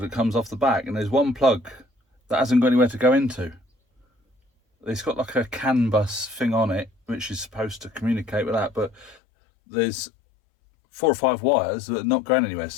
comes off the back and there's one plug that hasn't got anywhere to go into. it's got like a canbus thing on it, which is supposed to communicate with that, but there's 4 or 5 wires that are not going anywhere,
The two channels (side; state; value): right; drops out; at 9.2 s